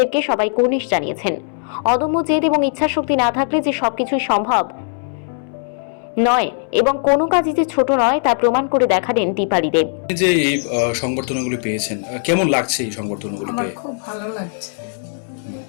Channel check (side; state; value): right; silent; 66 dB below the other